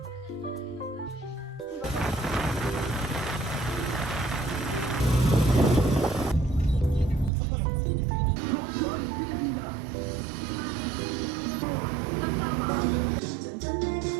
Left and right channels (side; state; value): left; drops out; at 7.3 s